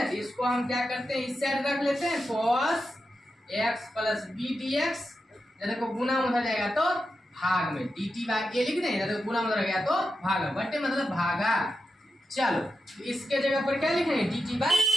इसको हम क्या करते हैं, इस साइड रख लेते हैं, cos x plus b d x, देखो गुना उधर जाएगा तो भाग में, dt बाय ए लिख दें, देखो गुना उधर गया तो भाग में, बट्टे मतलब भागा। चलो इसके जगह पर क्या लिखेंगे, dt बाय।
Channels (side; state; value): both; normal; correlation 0.89